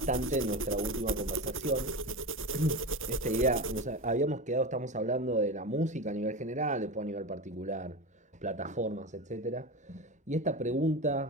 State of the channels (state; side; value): normal; both; correlation 0.23